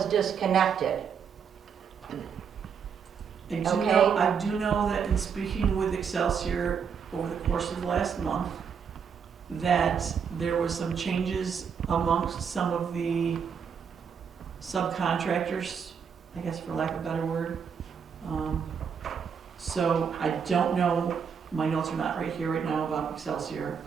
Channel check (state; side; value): quieter; left; 6.8 dB